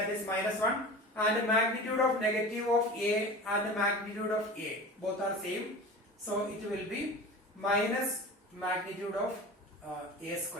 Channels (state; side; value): normal; both; correlation 0.34